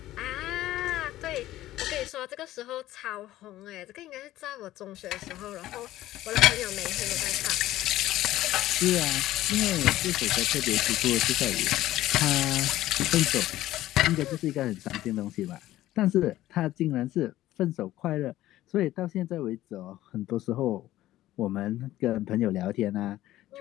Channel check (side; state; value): right; quieter; 14.9 dB